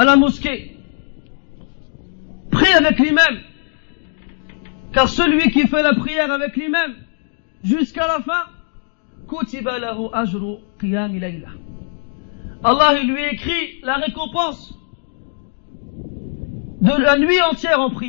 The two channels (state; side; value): silent; right; digital silence